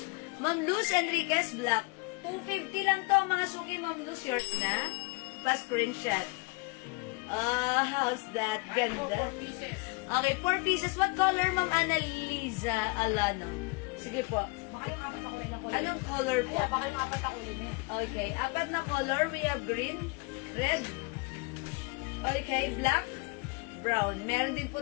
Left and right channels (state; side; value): quieter; right; 29.1 dB